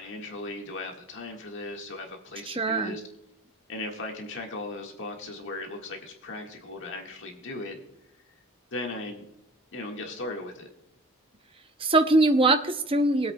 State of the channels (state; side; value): normal; both; correlation 0.43